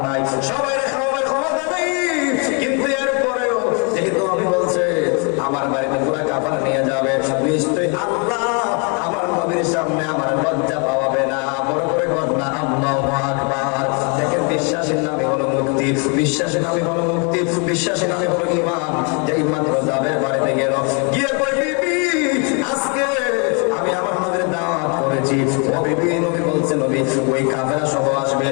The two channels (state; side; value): quieter; right; 35.3 dB